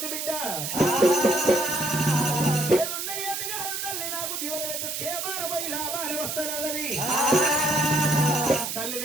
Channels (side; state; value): right; noise; hiss, 4 dB below the sound